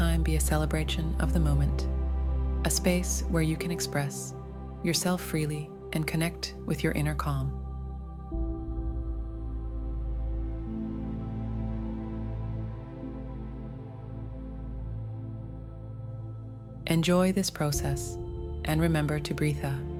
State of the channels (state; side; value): identical; both; correlation 1.00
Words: be a celebration of the moment, a space where you can express yourself freely and connect with your inner calm. Enjoy this process and remember to breathe